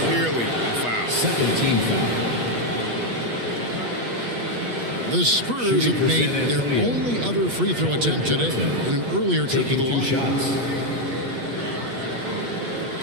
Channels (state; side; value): late; left; 8.3 ms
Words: Clearly a foul. Second team foul. The Spurs have made their only other free throw attempt today in an earlier trip to the line. Shots.